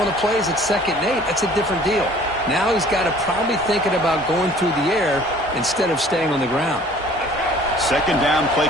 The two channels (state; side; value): normal; both; correlation 0.52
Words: the plays at 2nd and 8, that's a different deal. Now he's got to probably thinking about going through the air instead of staying on the ground. Second down play